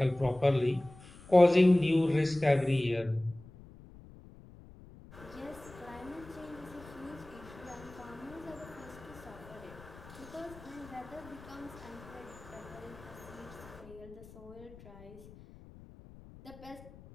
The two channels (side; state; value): left; noise; rumble, 19 dB below the sound